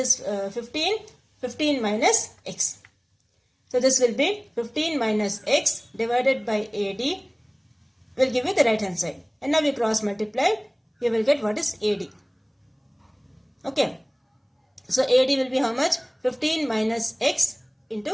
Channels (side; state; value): both; identical; correlation 1.00